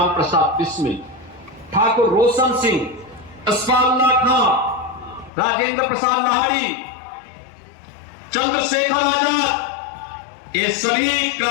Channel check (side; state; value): right; drops out; at 5.3 s